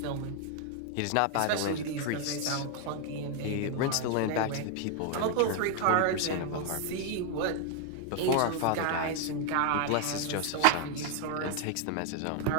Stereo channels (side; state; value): both; different; correlation 0.00